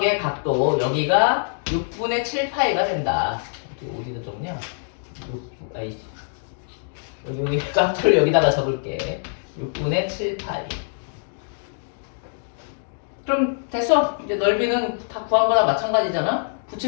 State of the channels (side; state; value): right; silent; digital silence